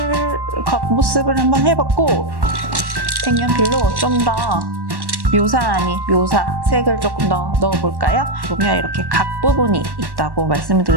겉모습을 한번 해봤고, 색연필로 좀 더 묘사 아닌 묘사 색을 조금 더 넣어볼까요? 보면 이렇게 각 부분이 있다고 말씀을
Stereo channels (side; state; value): left; late; 1.1 ms